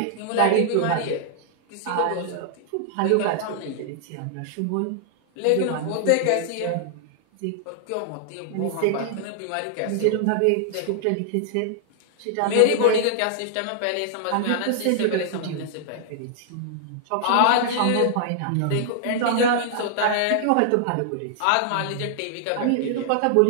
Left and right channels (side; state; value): both; different; correlation -0.01